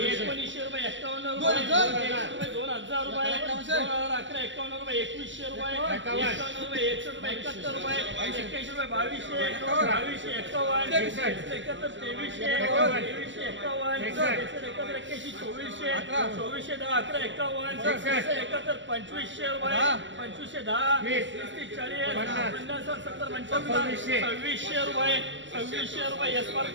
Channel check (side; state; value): left; late; 0.54 ms